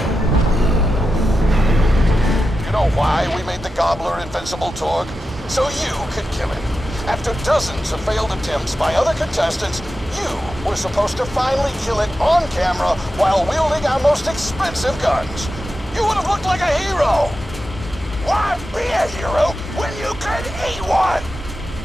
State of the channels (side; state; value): both; normal; correlation 0.91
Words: You know why we made the Gobbler invincible, Torg? So you could kill him. After After dozens of failed attempts by other contestants, you were supposed to finally kill it on camera while wielding our most expensive guns. You would have looked like a hero. Why be a hero when you could eat one?